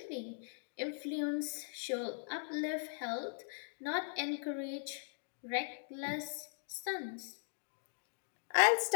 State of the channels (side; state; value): right; silent; digital silence